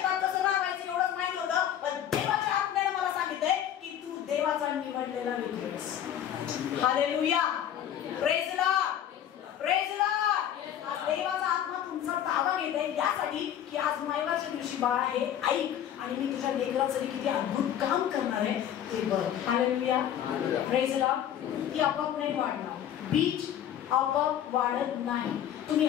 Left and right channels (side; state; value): right; quieter; 10.4 dB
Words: कसं राहायचं एवढंच माहित होतं, पण देवाच्या आत्म्याने मला सांगितलंय की तू देवाचा निवडलेला लेकरू आहेस. Hallelujah, praise the lord, praise the Lord. आज देवाचा आत्मा तुमचा ताबा घेत आहे यासाठी की आज मायवाच्या दिवशी बाळा हे ऐक आणि मी तुझ्या लेकरासाठी किती अद्भुत काम करणार आहे ते बघ. Hallelujah, praise the Lord. ती आपोआप नाही वाढणार, बीज आपोआप वाढत नाही. तुम्ही